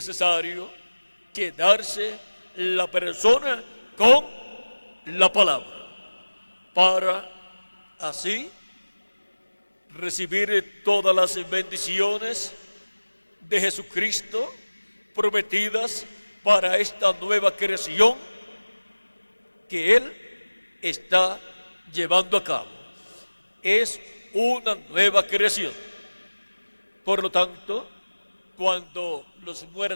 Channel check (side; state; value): both; inverted; correlation -1.00